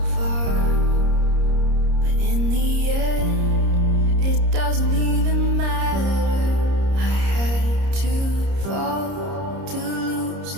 far, but in the end it doesn't even matter. I had to fall to lose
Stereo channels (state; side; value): late; left; 30 ms